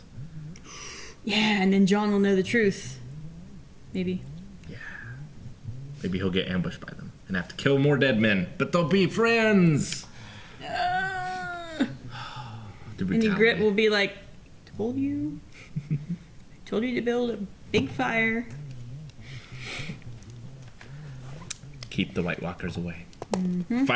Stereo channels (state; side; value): identical; both; correlation 1.00